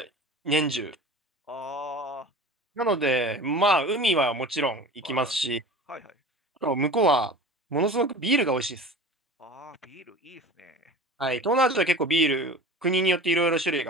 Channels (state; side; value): normal; both; correlation 0.36